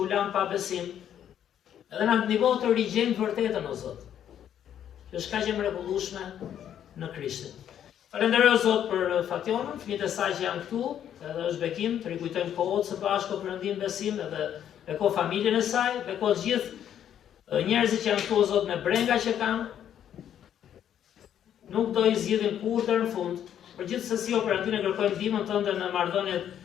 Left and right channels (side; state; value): right; quieter; 9.9 dB